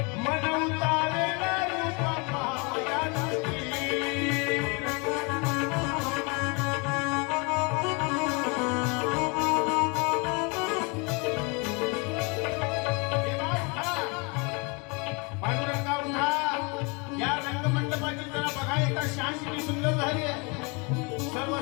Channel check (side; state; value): right; quieter; 30.7 dB